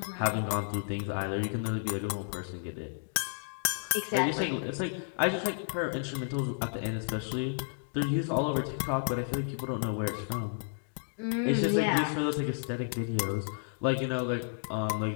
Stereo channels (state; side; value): silent; right; digital silence